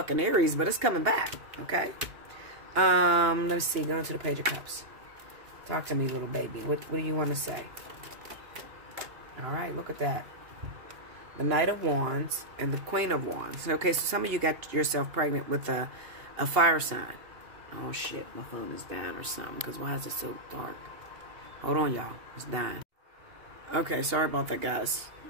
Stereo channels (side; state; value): left; late; 2.8 ms